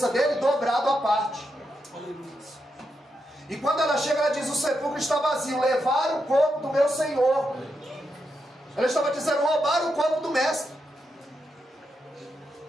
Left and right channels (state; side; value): normal; both; correlation 0.84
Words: dele dobrado à parte. E quando ela chega, ela diz: o sepulcro está vazio, levaram o corpo do meu Senhor. Ela estava dizendo: roubaram o corpo do mestre.